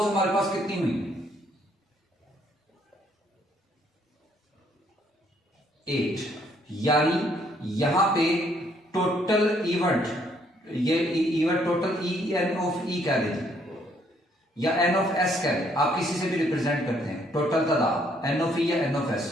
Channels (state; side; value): normal; both; correlation 0.68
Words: हमारे पास कितनी हुई? 8। यानी यहां पे टोटल इवेंट, ये event total E N of E कह दीजिए या एन ऑफ एस कह दे, आप किसी से भी रिप्रेजेंट करते हैं। टोटल तादाद एन ऑफ ई या एन ऑफ एस,